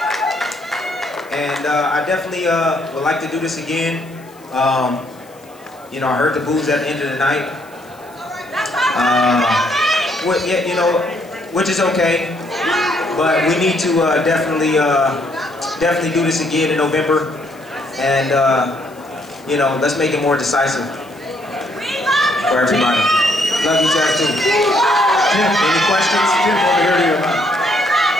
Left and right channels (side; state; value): left; noise; hiss, 27 dB below the sound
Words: And I definitely would like to do this again. You know, I heard the boos at the end of the night. Yeah, you know, which is okay. But we need to definitely do this again in November. And you know, let's make it more decisive for everybody. Love you guys too. Jim, any questions? Jim, over here to your mind.